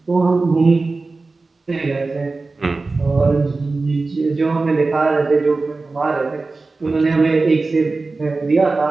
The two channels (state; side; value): quieter; left; 3.7 dB